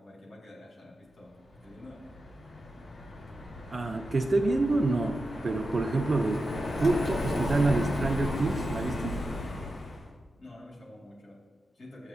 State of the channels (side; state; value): both; normal; correlation 0.90